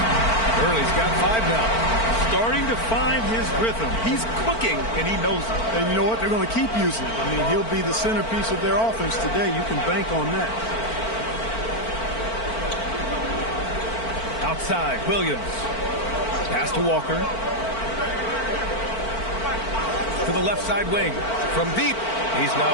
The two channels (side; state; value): right; late; 4.5 ms